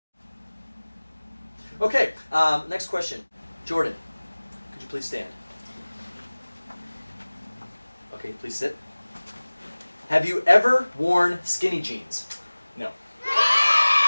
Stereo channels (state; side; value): inverted; both; correlation -1.00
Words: Okay, next question. Jordan, could you please stand? Okay, please sit. Have you ever worn skinny jeans? No.